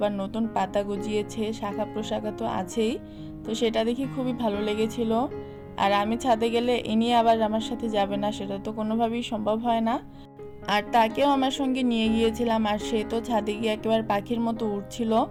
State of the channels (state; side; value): identical; both; correlation 1.00